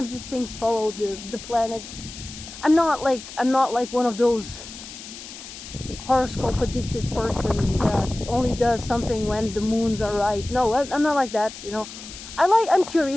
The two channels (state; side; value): noise; left; hiss, 13 dB below the sound